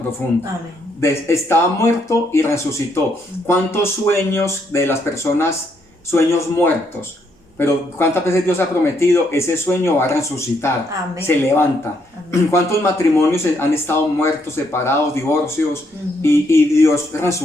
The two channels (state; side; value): normal; both; correlation 0.74